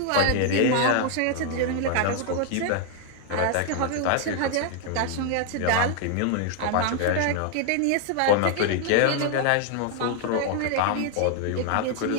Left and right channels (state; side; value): different; both; correlation 0.00